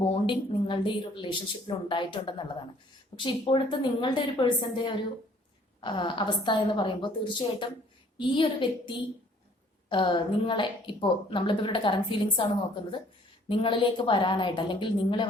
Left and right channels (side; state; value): both; normal; correlation 0.58